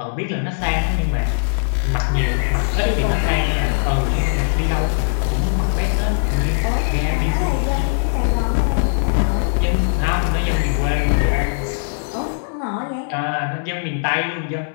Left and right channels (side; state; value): right; silent; 62 dB below the other